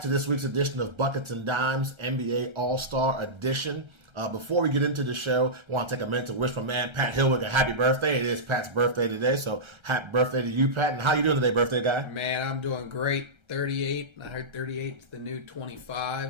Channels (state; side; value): late; left; 1.3 ms